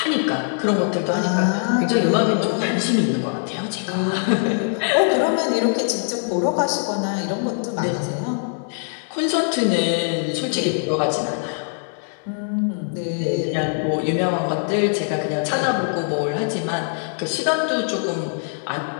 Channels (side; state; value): right; silent; digital silence